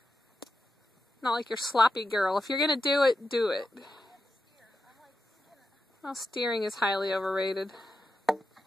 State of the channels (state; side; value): normal; both; correlation 0.89